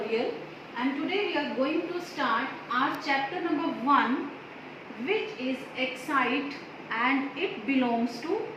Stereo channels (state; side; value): identical; both; correlation 1.00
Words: and today we are going to start our chapter number 1, which is Excite, and it belongs to